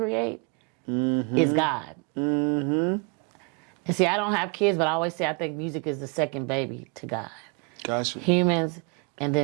is God. And see, I don't have kids, but I always say I think music is the second baby to God. Gotcha. Humans, and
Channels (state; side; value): quieter; left; 34.4 dB